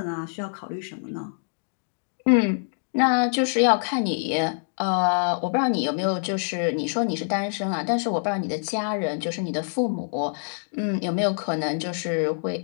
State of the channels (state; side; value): silent; right; digital silence